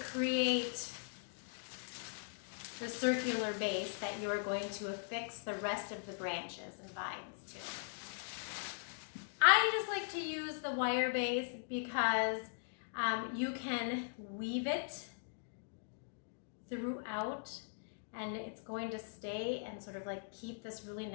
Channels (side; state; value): right; silent; digital silence